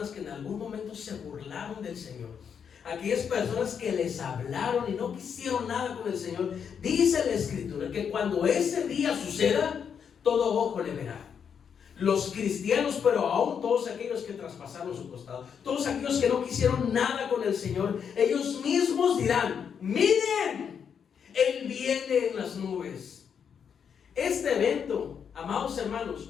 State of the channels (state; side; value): quieter; right; 7.3 dB